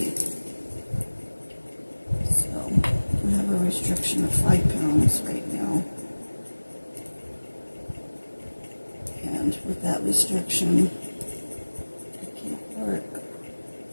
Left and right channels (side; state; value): both; inverted; correlation -1.00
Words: So I have a restriction of 5 pounds right now. And with that restriction, I can't work.